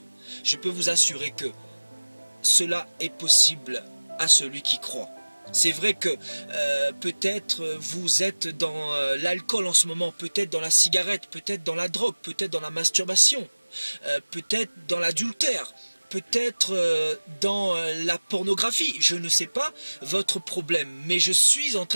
Je peux vous assurer que cela est possible à celui qui croit. C'est vrai que peut-être vous êtes dans l'alcool en ce moment, peut-être dans la cigarette, peut-être dans la drogue, peut-être dans la masturbation, peut-être dans l'adultère, peut-être dans la pornographie, je ne sais pas votre problème, mais je suis en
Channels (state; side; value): inverted; both; correlation -1.00